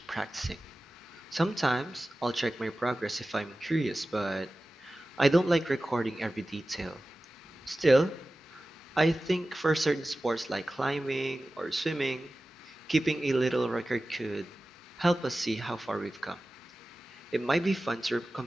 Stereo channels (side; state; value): both; normal; correlation 0.96